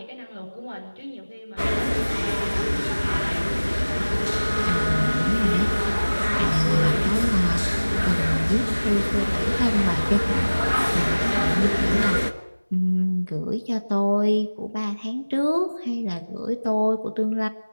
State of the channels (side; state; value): both; inverted; correlation -1.00